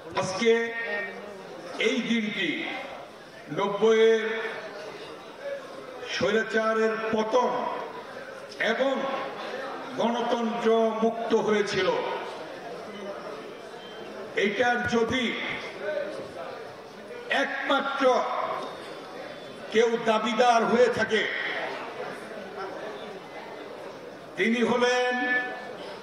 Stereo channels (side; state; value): both; identical; correlation 1.00